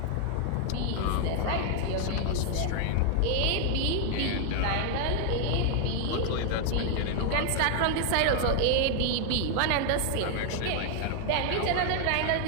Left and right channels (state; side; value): different; both; correlation 0.00